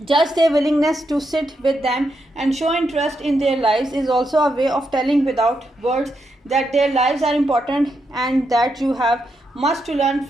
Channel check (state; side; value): normal; both; correlation 0.82